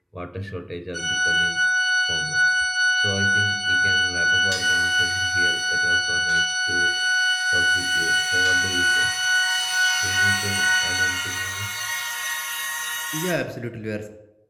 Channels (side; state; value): both; identical; correlation 1.00